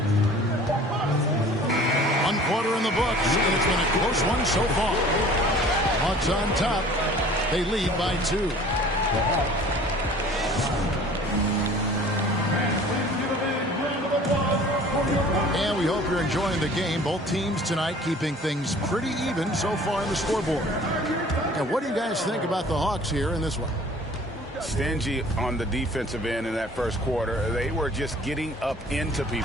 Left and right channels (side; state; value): both; normal; correlation 0.48